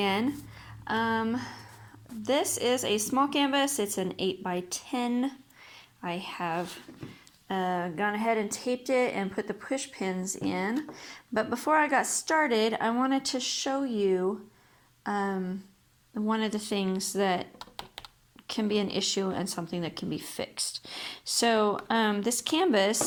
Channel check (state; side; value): identical; both; correlation 1.00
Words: This is a small canvas. It's an 8x10. I have gone ahead and taped it and put the push pins in. But before I got started, I wanted to show you one of the things that can be an issue and something that can be fixed. So this